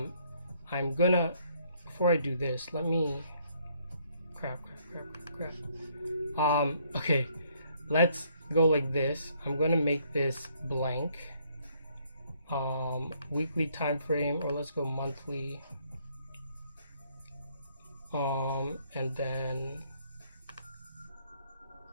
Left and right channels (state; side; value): inverted; both; correlation -0.67